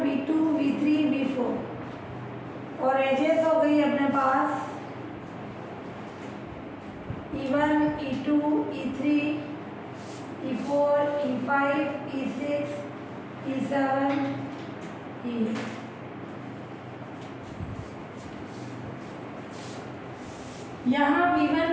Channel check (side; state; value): both; identical; correlation 1.00